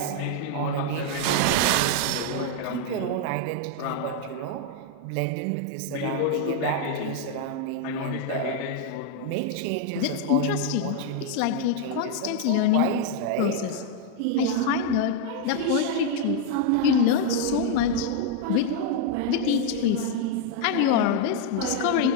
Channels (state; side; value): different; both; correlation 0.00